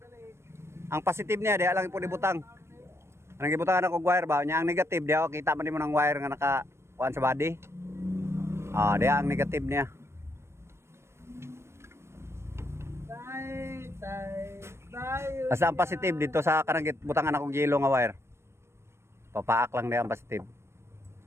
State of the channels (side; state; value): left; late; 0.13 ms